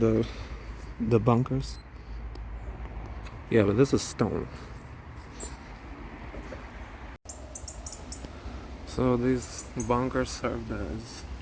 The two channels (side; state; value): both; identical; correlation 1.00